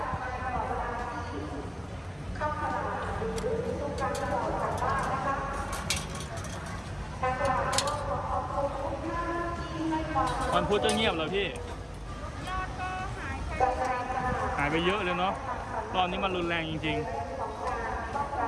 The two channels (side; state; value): both; identical; correlation 1.00